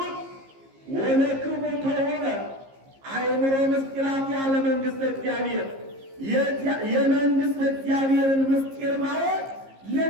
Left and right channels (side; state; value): left; late; 15 ms